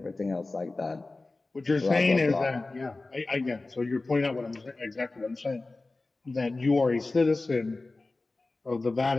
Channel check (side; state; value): right; quieter; 3.3 dB